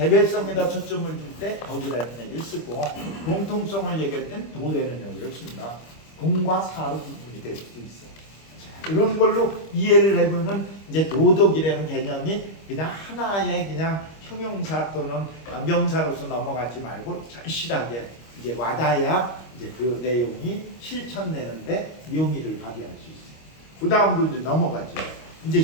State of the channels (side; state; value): right; late; 25 ms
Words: 초점을 줄 때 덕이라는 얘기를 쓰고 공통성을 얘기할 땐 도라는 얘기를 씁니다. 공과 사로 구분이 될 수도 있어. 자, 이런 걸로 이해를 해보면 이제 도덕이라는 개념이 그냥 하나의 그냥 형용사 또는 명사로서 넘어가지 말고 절실하게 이제 와닿아야 이제 그 내용이 실천되는데 묘미를 발휘할 수 있어요. 그 다음으로 이제 넘어가죠. 이제